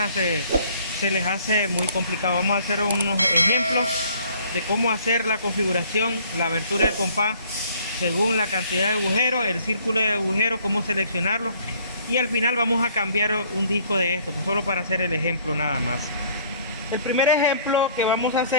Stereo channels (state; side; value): inverted; both; correlation -0.57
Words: se les hace muy complicado. Vamos a hacer unos ejemplos de cómo hacer la configuración, la abertura del compás según la cantidad de agujeros, el círculo de agujeros, cómo seleccionarlo, y al final vamos a cambiar un disco de esto, pues solo para hacer el ejemplo nada más. El primer ejemplo que vamos a